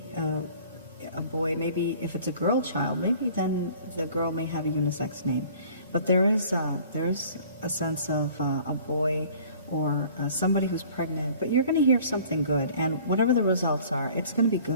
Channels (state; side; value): inverted; both; correlation -0.50